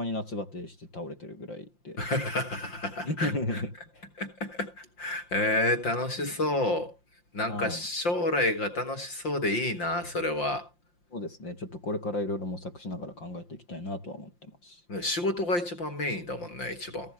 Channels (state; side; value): late; right; 5.7 ms